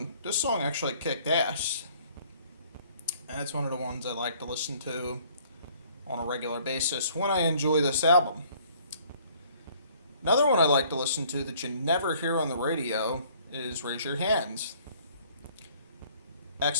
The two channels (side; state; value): both; inverted; correlation -0.58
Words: actually kicked ass. And it's one of the ones I like to listen to on a regular basis when I enjoy this album. Another one I like to listen to that you never hear on the radio is Raise Your Hands.